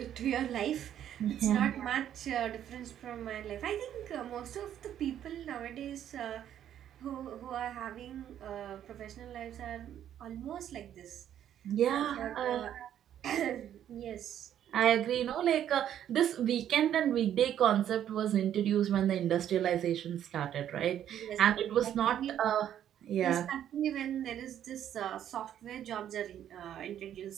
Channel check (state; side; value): quieter; left; 10.5 dB